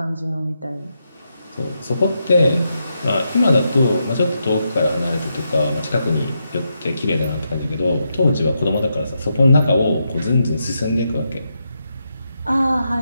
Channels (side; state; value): both; inverted; correlation -0.83